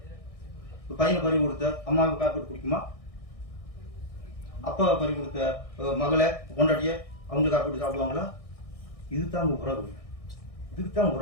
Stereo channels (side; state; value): right; late; 1.6 ms